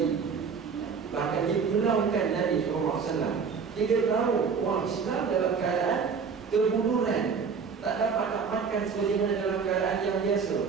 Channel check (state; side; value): quieter; left; 5.8 dB